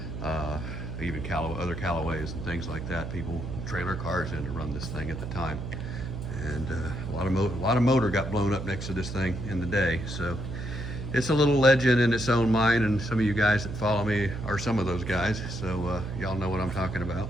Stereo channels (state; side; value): noise; right; hum, 7 dB below the sound